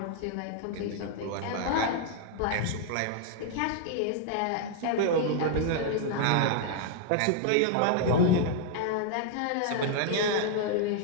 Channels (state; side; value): different; both; correlation 0.00